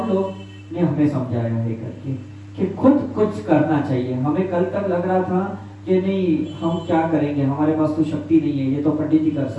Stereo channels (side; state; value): both; identical; correlation 1.00